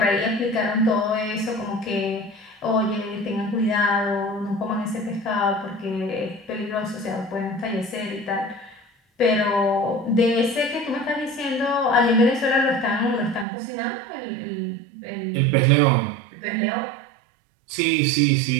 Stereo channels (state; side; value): drops out; left; at 13.5 s